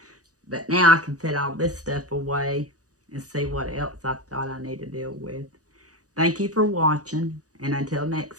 But now I can put all this stuff away and see what else I thought I need to deal with. Thank you for watching, and until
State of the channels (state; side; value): late; left; 0.67 ms